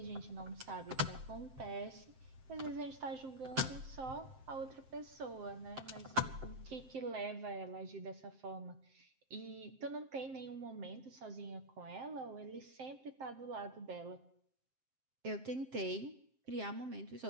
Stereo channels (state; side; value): late; left; 7.6 ms